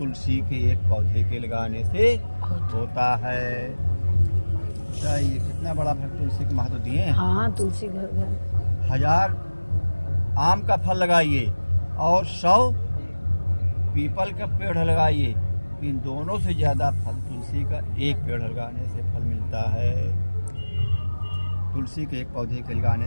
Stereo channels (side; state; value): both; inverted; correlation -1.00